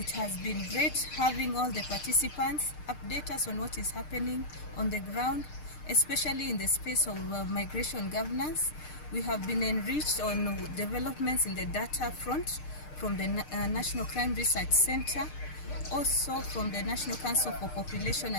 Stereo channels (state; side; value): late; right; 6.6 ms